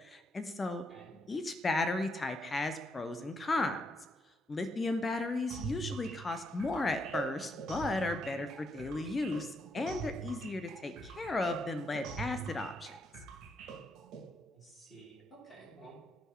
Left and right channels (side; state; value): both; normal; correlation 0.78